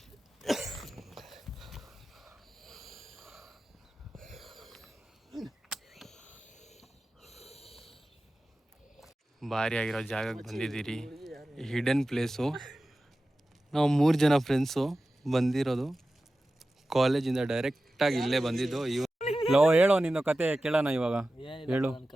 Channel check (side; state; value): both; normal; correlation 0.95